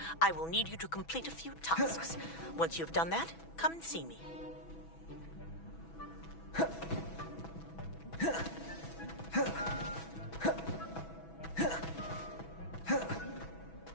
I will need you to complete a few tasks. Once you've done that, come and see me.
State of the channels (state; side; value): late; right; 6.1 ms